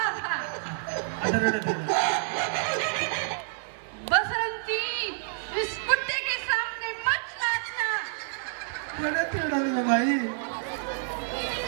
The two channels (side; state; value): left; silent; digital silence